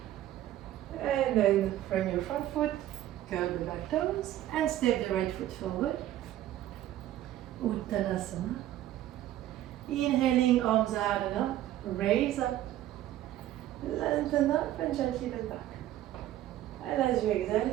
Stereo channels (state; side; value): quieter; left; 13.3 dB